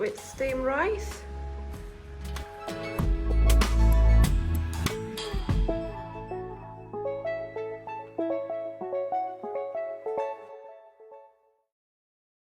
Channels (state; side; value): identical; both; correlation 1.00